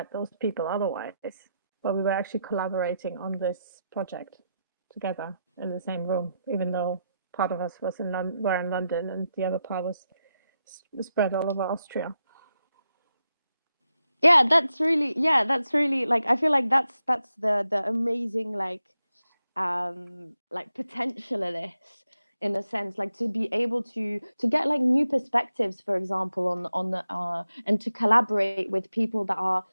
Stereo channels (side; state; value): both; inverted; correlation -0.86